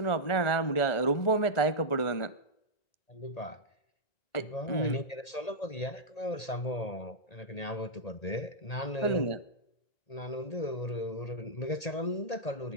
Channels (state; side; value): late; right; 1.8 ms